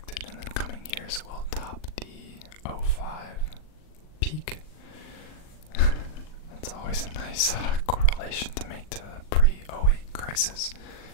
in the coming years will top the '05 peak. That's always a nice correlation to make to the pre-'08 crisis.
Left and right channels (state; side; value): late; right; 39 ms